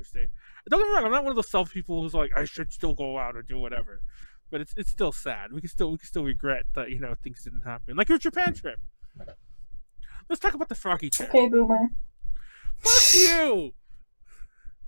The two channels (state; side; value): inverted; both; correlation -1.00